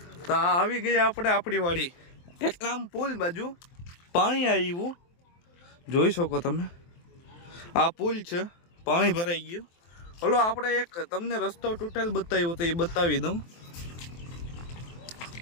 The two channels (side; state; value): right; late; 23 ms